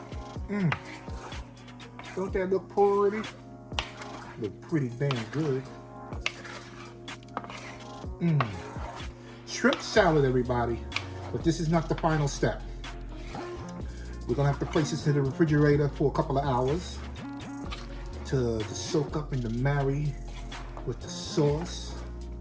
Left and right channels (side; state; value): both; identical; correlation 1.00